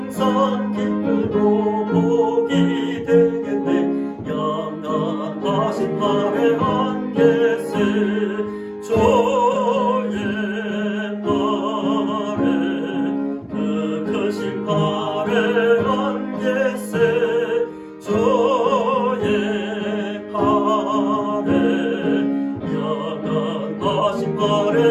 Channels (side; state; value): both; identical; correlation 1.00